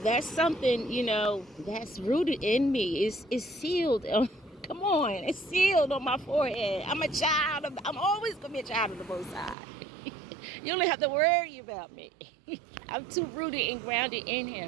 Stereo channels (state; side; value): drops out; left; at 9.6 s